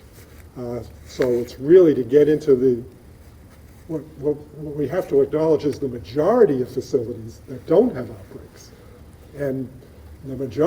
So it's really to get into what we have to acknowledge is the majority of facilities that don't have outbreaks. And the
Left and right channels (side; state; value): both; identical; correlation 1.00